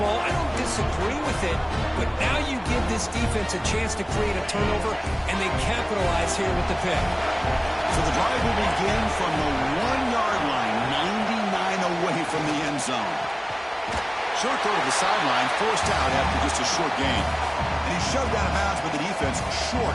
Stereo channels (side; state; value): both; identical; correlation 1.00